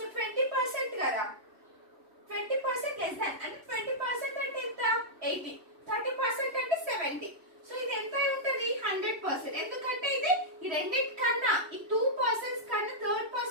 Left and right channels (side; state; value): left; late; 3.1 ms